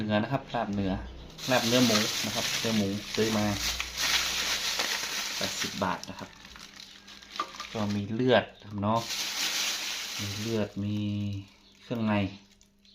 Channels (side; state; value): both; identical; correlation 1.00